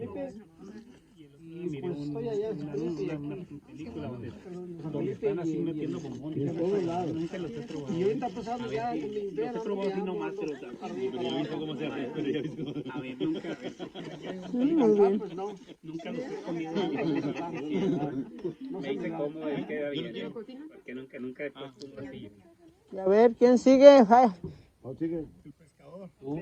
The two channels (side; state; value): both; identical; correlation 1.00